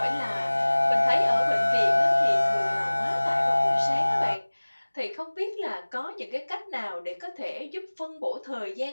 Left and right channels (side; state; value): both; inverted; correlation -1.00